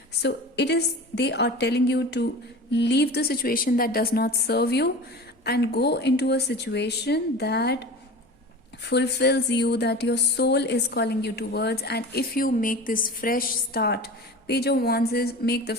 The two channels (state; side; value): normal; both; correlation 0.35